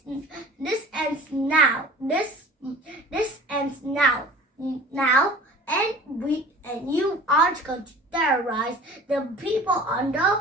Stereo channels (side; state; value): both; normal; correlation 0.43